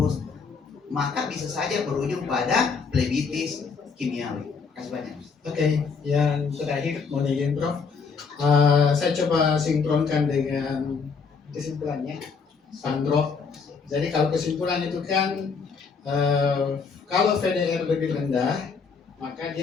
maka bisa saja berujung pada plebitis kimiawi. Terima kasih banyak. Oke, yang terakhir mau izin Prof. Saya coba sinkronkan dengan kesimpulannya, Sandro. Jadi kalau kesimpulan itu kan kalau VDR lebih rendah, maka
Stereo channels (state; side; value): quieter; right; 5.3 dB